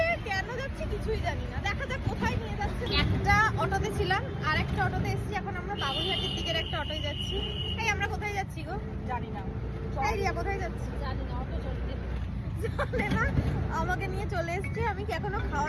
কেন যাচ্ছি কিছুই জানি না। দেখা যাক কোথায় নিয়ে যাচ্ছে। একটা অটোতে ছিলাম, আর একটা অটোতে এসেছি। এখন আমরা বাবুঘাটের দিকের একটা অটোয় যাচ্ছি। এই আমরা কোথায় যাচ্ছি গো? জানি না, এই রিয়া কোথায় যাচ্ছি? জানি না, অটো চলতে জানে না, আমাকে নিয়ে চলে এসছে। আমি কি এখনো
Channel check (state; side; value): identical; both; correlation 1.00